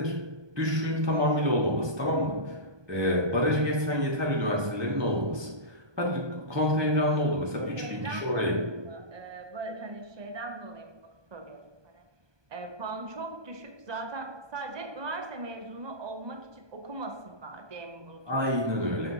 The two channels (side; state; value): left; late; 1.2 ms